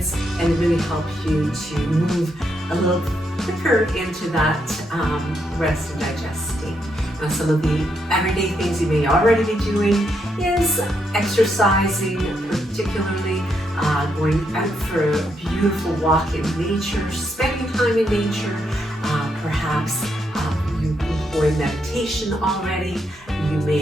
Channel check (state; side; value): normal; both; correlation 0.79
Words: and really help you to move a little quicker into that rest and digest state. Now, some of the everyday things you may already be doing is exercising, particularly going out for a beautiful walk in nature, spending time in nature, perhaps you employ meditation already. You